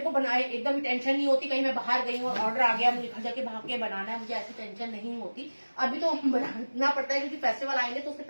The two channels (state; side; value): inverted; both; correlation -1.00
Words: को बनाए एकदम टेंशन नहीं होती, कहीं मैं बाहर गई हूँ और ऑर्डर आ गया, मुझे घर जाके भाग के बनाना है, मुझे ऐसी टेंशन नहीं होती। अभी तो बनाना पड़ता है क्योंकि फेस्टिवल आएंगे, तो उससे